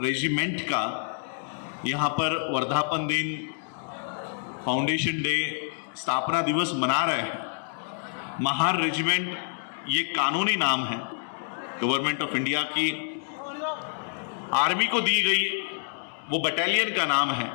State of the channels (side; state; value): right; silent; digital silence